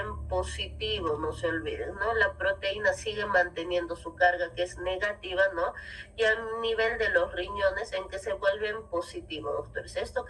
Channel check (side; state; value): both; identical; correlation 1.00